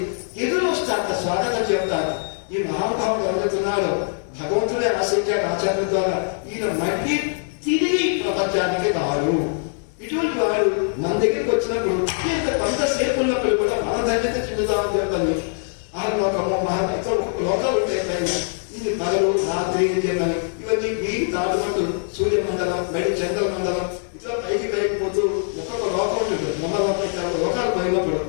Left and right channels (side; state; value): right; silent; digital silence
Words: ఎదురు వస్తారట, స్వాగతం చెప్తారు. ఈ మహానుభావుడు ఎవరుతున్నారో భగవంతుడే ఆశించాడు ఆచార్యుల ద్వారా, ఈయన మళ్ళీ తిరిగి ప్రపంచానికి రాడు. ఇటువంటి వాడు మన దగ్గరికి వచ్చినప్పుడు కొంతసేపు ఉన్నప్పుడు కూడా మన ధన్యత చెందుతామని చెప్తాను. ఆ లోకము మహాతో లోకాలు ఉంటాయి, ఇది పగలు రాత్రి చెప్పని ఇవన్నీ వీటి దాటుకుంటూ సూర్యమండలం, బయట చంద్రమండలం ఇట్లా పైకి పోతూ ఒక్కొక్క లోకం ఉంటుంది. లోకాలు పోయినప్పుడు